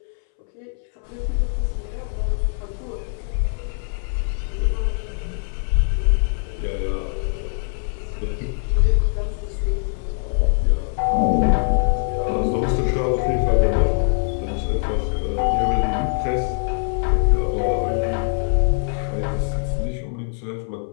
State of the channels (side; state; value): right; silent; 64 dB below the other